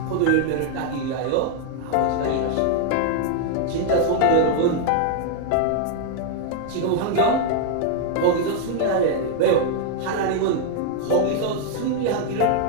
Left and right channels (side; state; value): both; different; correlation 0.00